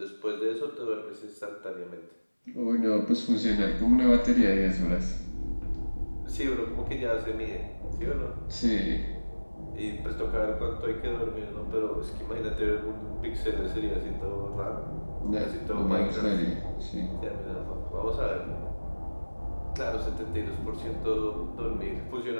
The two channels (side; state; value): both; inverted; correlation -1.00